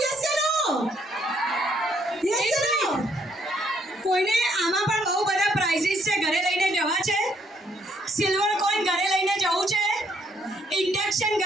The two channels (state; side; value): normal; both; correlation 0.70